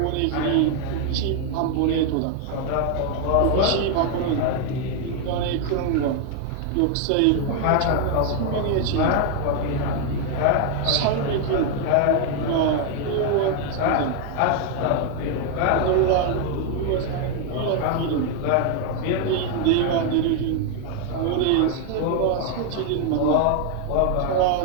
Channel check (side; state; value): both; different; correlation 0.00